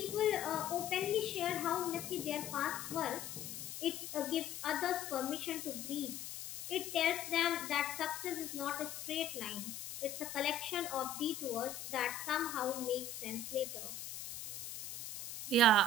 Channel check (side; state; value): left; noise; hiss, 8 dB below the sound